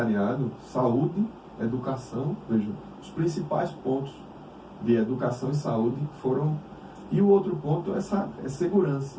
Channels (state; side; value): identical; both; correlation 1.00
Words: saúde, educação. Veja, os principais pontos de educação e saúde foram... E o outro ponto é segurança.